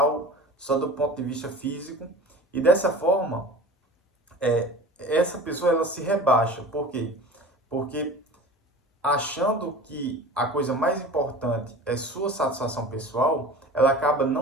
só do ponto de vista físico, e dessa forma, essa pessoa ela se rebaixa. Por quê? Porque achando que a coisa mais importante é sua satisfação pessoal, ela acaba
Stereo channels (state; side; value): normal; both; correlation 0.39